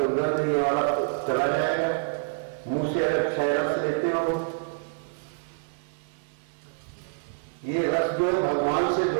ये वाला चला जाएगा? मुंह से अगर 6 रस लेते हो, ये रस जो भगवान से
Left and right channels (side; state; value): left; silent; 60 dB below the other